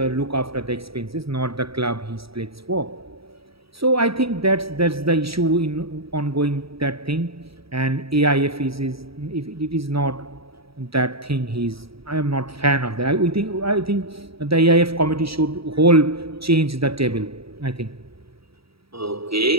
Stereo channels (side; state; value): left; late; 0.76 ms